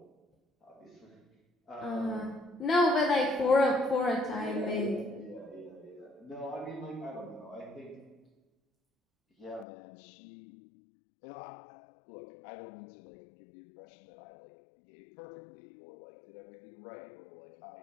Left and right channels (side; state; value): right; drops out; at 9.7 s